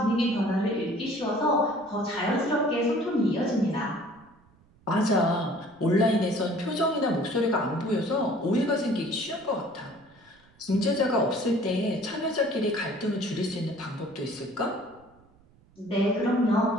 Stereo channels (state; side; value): noise; right; rumble, 30 dB below the sound